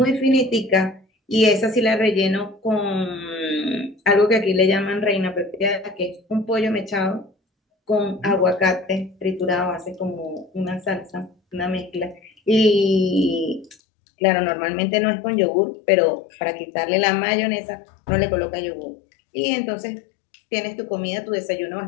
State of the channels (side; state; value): right; drops out; at 13.8 s